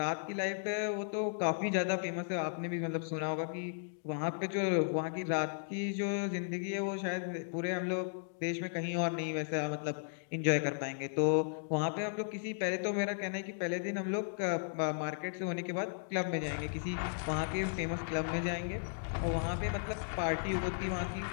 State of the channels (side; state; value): right; silent; digital silence